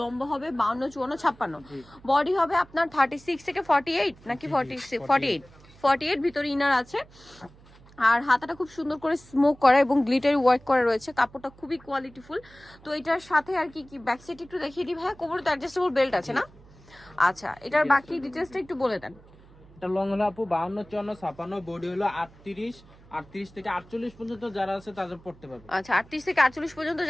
হবে 52, 54, 56, বডি হবে আপনার 36 থেকে 48 নাকি 48 ভিতরে ইনার আছে। আর হাতাটা খুব সুন্দর করে স্মোক করা এবং গ্লিটারি ওয়ার্ক করা রয়েছে। কাপড়টা খুবই কোয়ালিটিফুল। তো এটার সাথে আর কি কি ব্যাক সাইড একটু দেখিয়ে দিই ভাই। কোমরে তো অ্যাডজাস্টেবল বেল্ট আছে না? আচ্ছা, এটার বাকি ডিটেইলসটা একটু বলে দেন। এটা লং হলো আপু 52, 54, 56, বডি হলো 38 থেকে 48 পর্যন্ত যারা আছে তাদের পড়তে পারবে। আচ্ছা, 38 থেকে 48 পর্যন্ত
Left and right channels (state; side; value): noise; right; hum, 24 dB below the sound